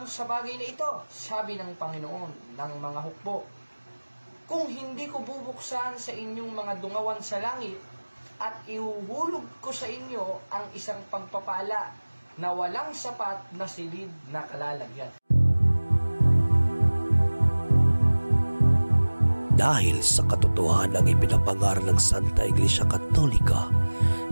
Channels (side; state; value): both; inverted; correlation -1.00